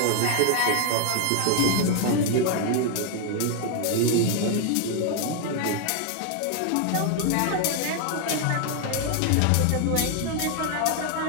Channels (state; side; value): different; both; correlation 0.00